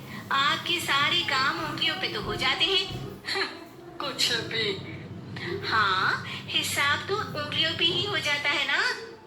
आपके सारे काम उंगलियों पे तो हो जाते हैं। कुछ भी। हाँ, हिसाब तो उंगलियों पे ही हो जाता है ना।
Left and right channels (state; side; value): identical; both; correlation 1.00